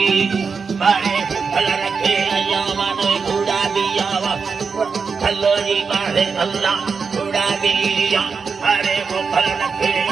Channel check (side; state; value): left; quieter; 5.3 dB